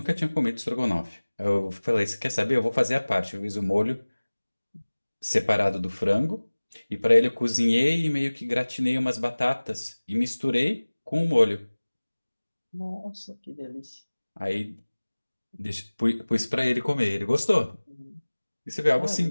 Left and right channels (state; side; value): inverted; both; correlation -1.00